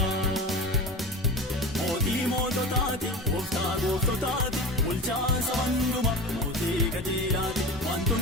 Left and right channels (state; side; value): normal; both; correlation 0.29